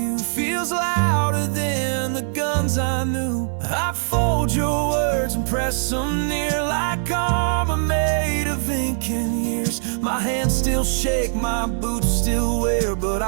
feels louder than the guns I knew. I fold your words and press them near like armor made of ink and years. My hands still shake, my boots still wear, but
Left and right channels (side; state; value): left; silent; digital silence